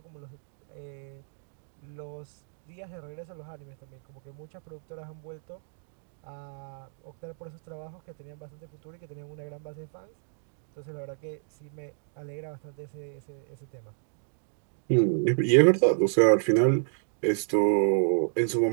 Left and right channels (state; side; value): silent; left; digital silence